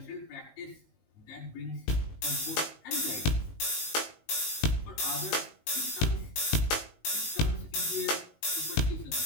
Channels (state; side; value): late; right; 19 ms